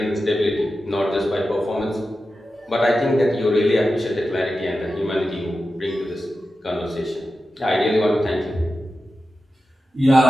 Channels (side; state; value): both; normal; correlation 0.92